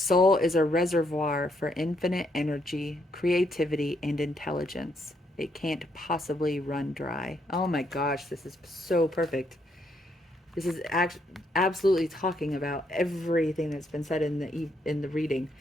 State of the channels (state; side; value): normal; both; correlation 0.74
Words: is a reservoir for infinite energy, creativity, and intelligence. It can't possibly run dry. Oh my gosh, this is so perfect. This is absolutely talking about everything that's been said in the reading.